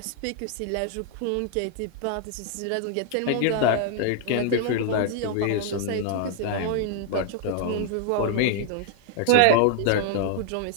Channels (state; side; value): different; both; correlation 0.00